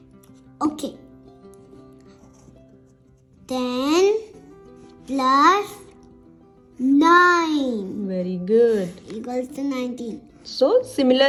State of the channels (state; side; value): identical; both; correlation 1.00